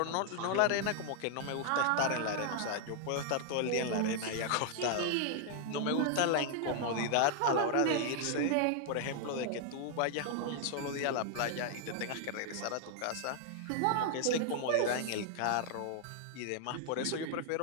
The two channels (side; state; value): both; different; correlation 0.00